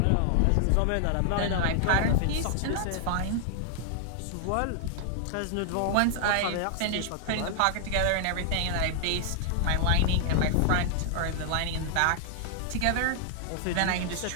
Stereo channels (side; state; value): both; different; correlation 0.00